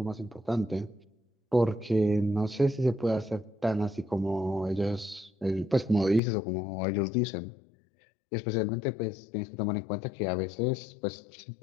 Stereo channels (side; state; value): right; drops out; at 6.2 s